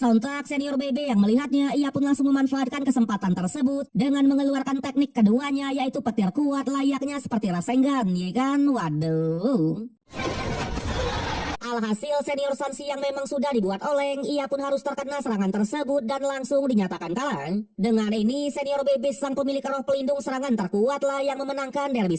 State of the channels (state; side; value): identical; both; correlation 1.00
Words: senior BB yang melihatnya, ia pun langsung memanfaatkan kesempatan tersebut dengan mengeluarkan teknik keduanya, yaitu petir kuat layaknya seperti Rasengan, ya kan? Waduh. Alhasil senior Sanshi yang memang sudah dibuat oleng, ia pun harus terkena serangan tersebut dan langsung dinyatakan kalah. Dengan ini senior BB sang pemilik roh pelindung serangan terkuatlah yang memenangkan derby